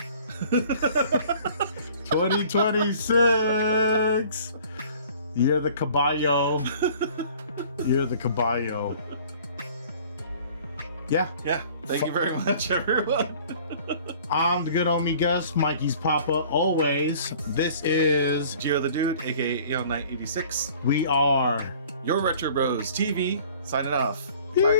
2026. You're the caballo. You're the caballo. Yeah. Thank you very much, everyone. I'm the good homie Gus, Mikey's Papa, always. This is Gio the Dude, aka AL986. We are Your Retro Bros TV. Signing off. Bye,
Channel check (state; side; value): inverted; both; correlation -0.51